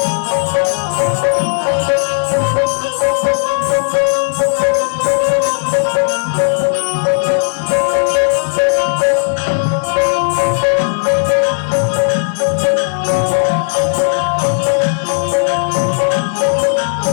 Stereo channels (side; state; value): right; silent; digital silence